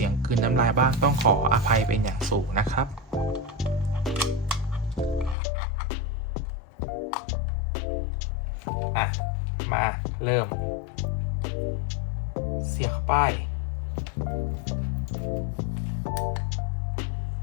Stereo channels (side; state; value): right; drops out; at 5.4 s